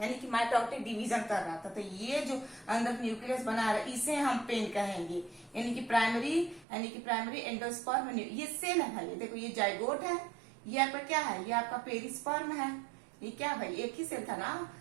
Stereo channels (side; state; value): left; drops out; at 6.7 s